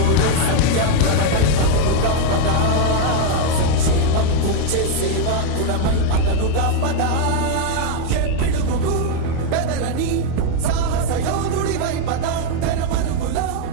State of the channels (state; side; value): different; both; correlation 0.01